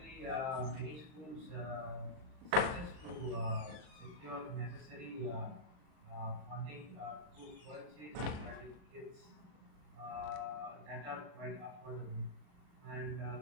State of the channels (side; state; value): left; late; 39 ms